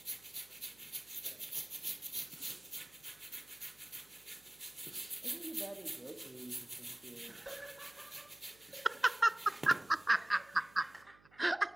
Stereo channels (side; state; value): right; noise; hum, 27 dB below the sound